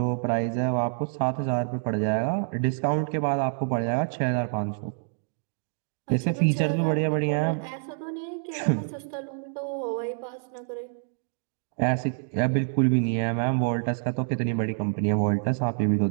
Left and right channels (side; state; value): left; silent; 60 dB below the other